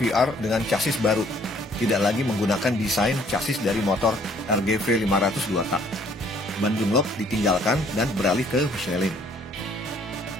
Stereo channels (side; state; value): both; normal; correlation 0.61